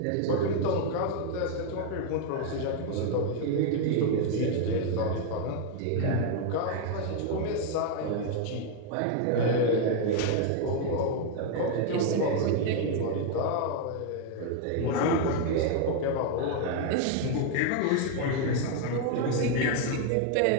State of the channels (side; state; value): both; different; correlation 0.01